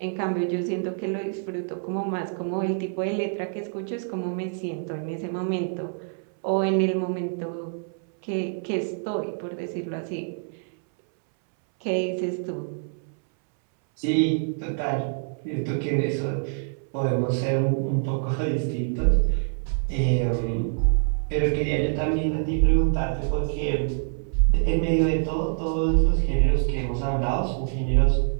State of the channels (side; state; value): left; silent; 61 dB below the other